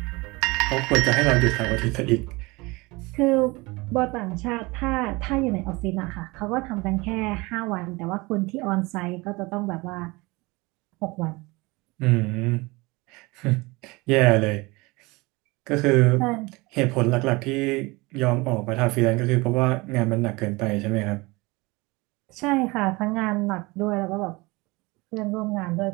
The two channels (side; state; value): left; quieter; 23.9 dB